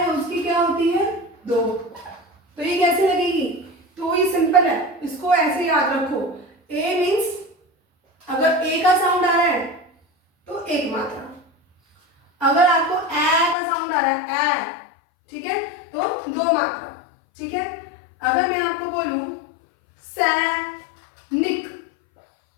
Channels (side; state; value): right; drops out; at 13.6 s